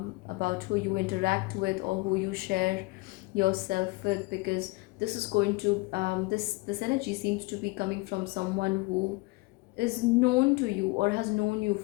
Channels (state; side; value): quieter; right; 24.5 dB